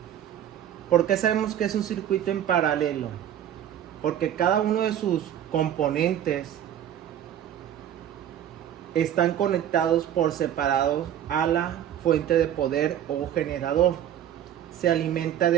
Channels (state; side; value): quieter; left; 10.6 dB